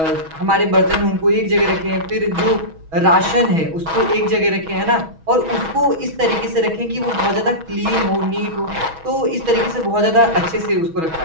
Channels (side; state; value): left; late; 6.2 ms